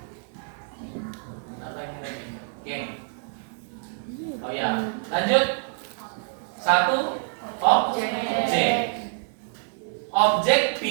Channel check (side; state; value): left; silent; digital silence